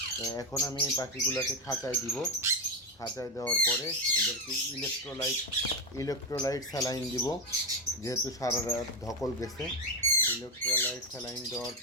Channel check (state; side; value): normal; both; correlation 0.10